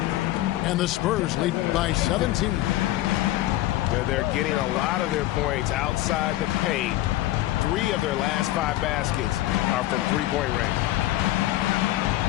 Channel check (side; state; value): right; quieter; 15.7 dB